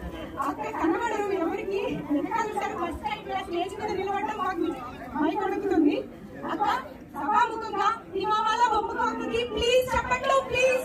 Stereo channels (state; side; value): identical; both; correlation 1.00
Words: అక్కడ కనబడరు ఎవరికి. ఫస్ట్ టైం స్టేజ్ మీద నిలబడడం మాకు మైక్ అడుగుతుంది. అక్క సభాముఖంగా హిమామాల బొమ్మకు ప్లీజ్ చెప్పట్లు,